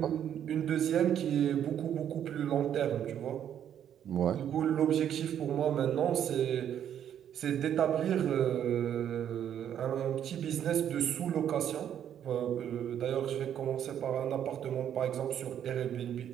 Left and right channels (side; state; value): left; quieter; 9.7 dB